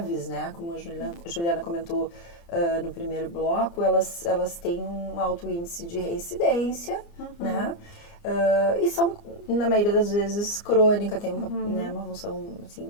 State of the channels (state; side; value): late; right; 29 ms